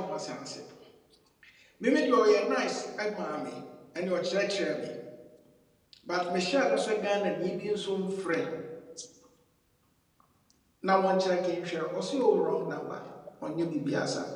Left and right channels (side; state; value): both; identical; correlation 1.00